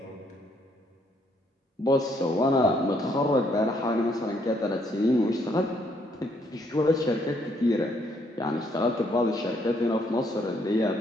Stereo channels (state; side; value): normal; both; correlation 0.70